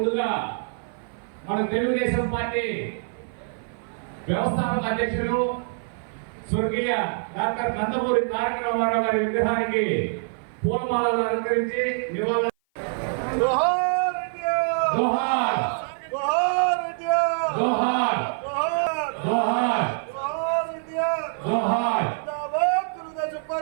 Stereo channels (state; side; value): silent; left; 56 dB below the other